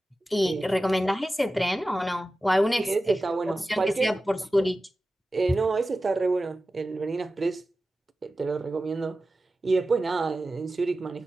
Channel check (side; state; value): both; normal; correlation 0.94